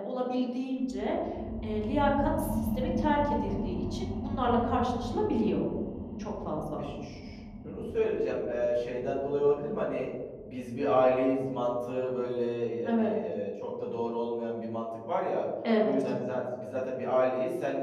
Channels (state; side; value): identical; both; correlation 1.00